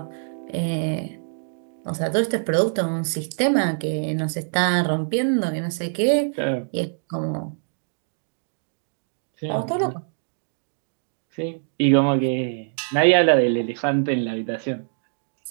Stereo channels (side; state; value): left; silent; digital silence